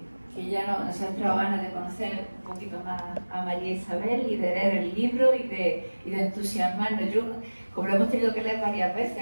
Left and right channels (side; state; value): both; inverted; correlation -1.00